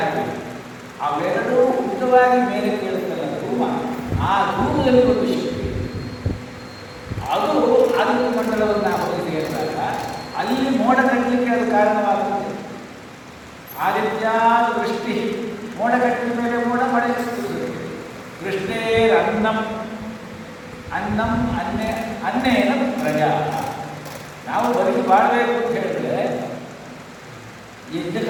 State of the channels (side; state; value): both; identical; correlation 1.00